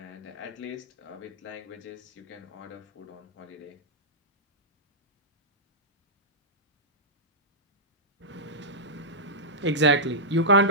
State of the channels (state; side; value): normal; both; correlation -0.13